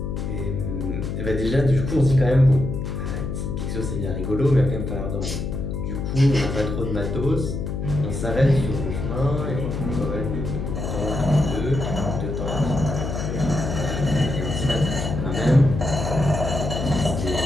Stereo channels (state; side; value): noise; left; hum, 4 dB below the sound